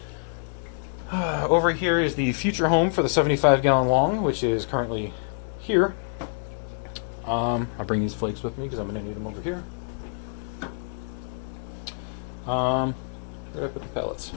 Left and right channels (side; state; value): right; silent; digital silence